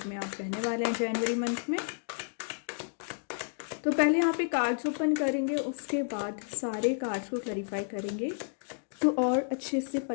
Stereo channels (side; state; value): right; silent; digital silence